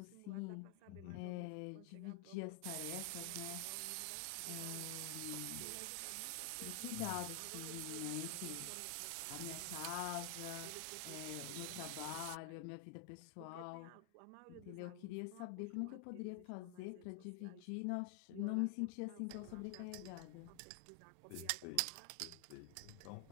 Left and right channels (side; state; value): both; different; correlation 0.00